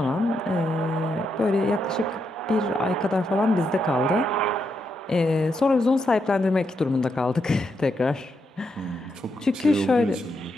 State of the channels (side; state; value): both; normal; correlation 0.81